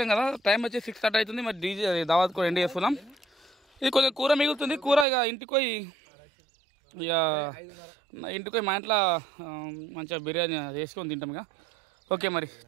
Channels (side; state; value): left; drops out; at 5.1 s